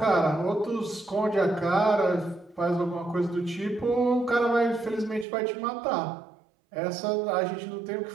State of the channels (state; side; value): drops out; left; at 5.2 s